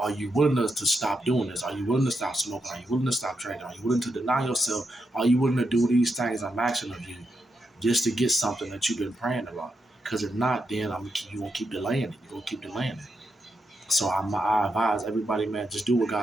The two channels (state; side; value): normal; both; correlation 0.83